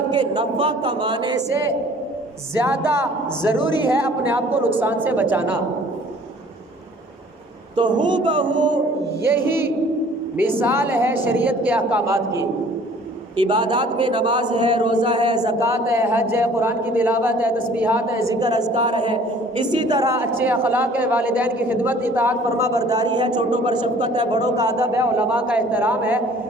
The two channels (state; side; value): normal; both; correlation 0.52